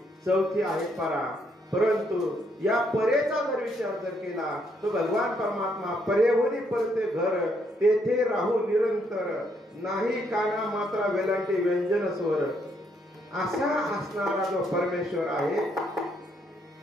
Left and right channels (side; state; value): both; normal; correlation 0.73